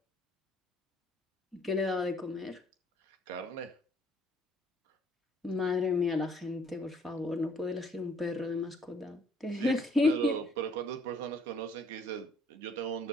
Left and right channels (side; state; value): both; normal; correlation 0.61